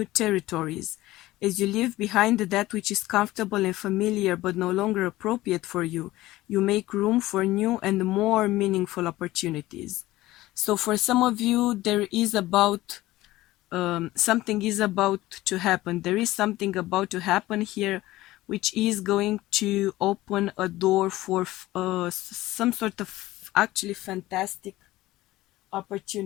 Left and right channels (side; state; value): right; quieter; 17.2 dB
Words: territories. As you leave behind that which is comfortable and familiar but no longer appropriate for you, you make room for new and more meaningful opportunities. So for some of you, there is about something is about to happen. There is something about to happen here, which is going to open a door for some sort of actually fantastic